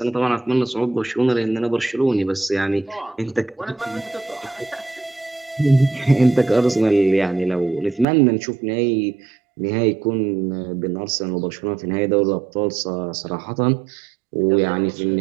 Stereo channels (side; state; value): left; drops out; at 8.1 s